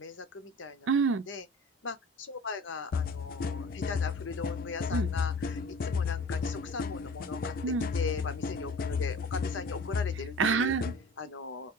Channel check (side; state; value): both; normal; correlation 0.41